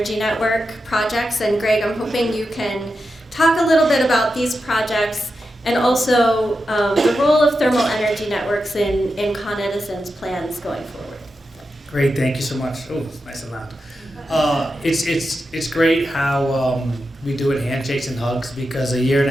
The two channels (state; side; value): normal; both; correlation 0.89